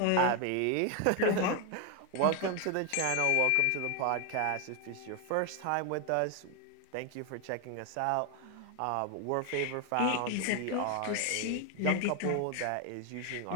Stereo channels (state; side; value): different; both; correlation 0.01